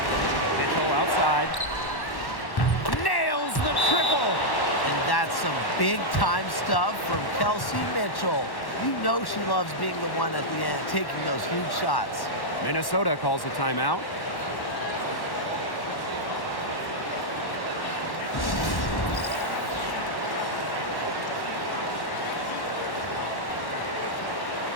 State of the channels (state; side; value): late; right; 1.1 ms